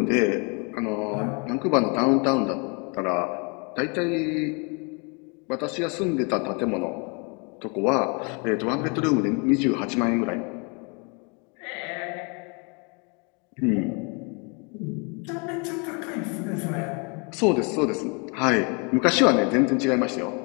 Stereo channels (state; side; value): quieter; right; 33.8 dB